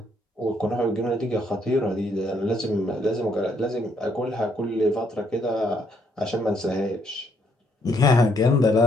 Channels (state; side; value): normal; both; correlation 0.71